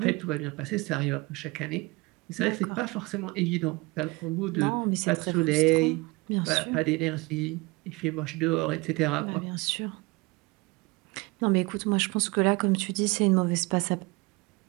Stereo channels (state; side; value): quieter; left; 24.7 dB